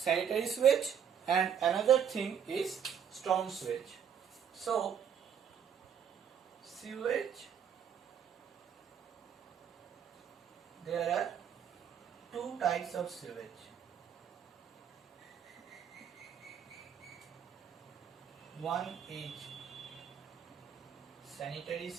sewage and another thing is storm sewage. So, sewage, there are two types of sewage. One is sanitary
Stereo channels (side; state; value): left; quieter; 8.2 dB